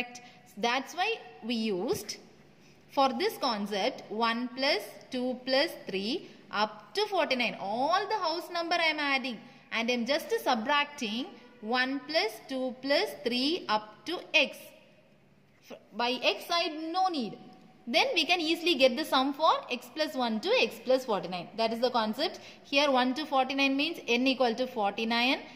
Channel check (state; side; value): identical; both; correlation 1.00